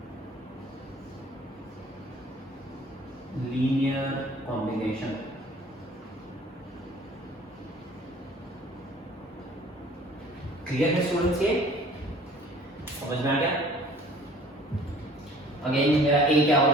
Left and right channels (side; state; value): both; normal; correlation 0.51